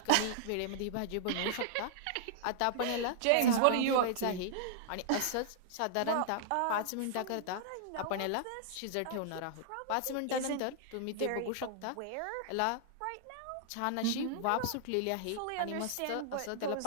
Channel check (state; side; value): different; both; correlation -0.01